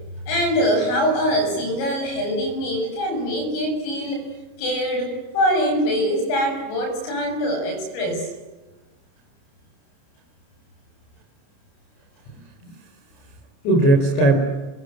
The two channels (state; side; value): late; right; 29 ms